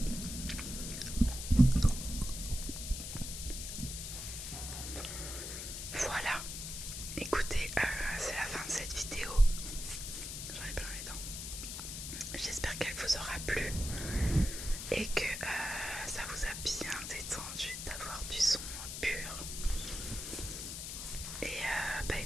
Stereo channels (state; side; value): noise; left; hiss, 6 dB below the sound